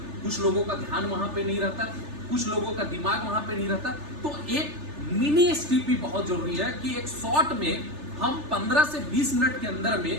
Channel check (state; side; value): late; left; 3.3 ms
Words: कुछ लोगों का ध्यान वहां पे नहीं रहता, कुछ लोगों का दिमाग वहां पे नहीं रहता। तो एक मिनी एसटीपी बहुत जरूरी है कि एक शॉर्ट में हम 15 से 20 मिनट के अंदर